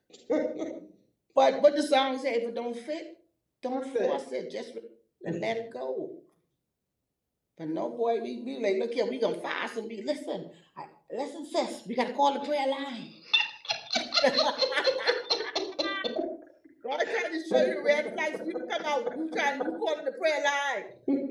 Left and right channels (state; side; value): identical; both; correlation 1.00